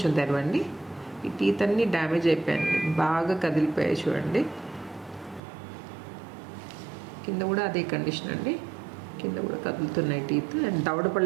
తెరవండి. ఈ టీత్ అన్నీ డ్యామేజ్ అయిపోయాయండి, బాగా కదిలిపోయాయి చూడండి. కింద కూడా అదే కండిషన్ అండి, కింద కూడా కదులుతున్నాయి టీత్. అండ్ దవడ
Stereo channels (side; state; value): left; drops out; at 5.4 s